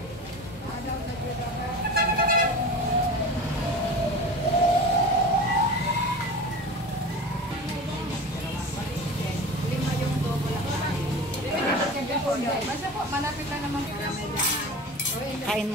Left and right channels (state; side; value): normal; both; correlation 0.33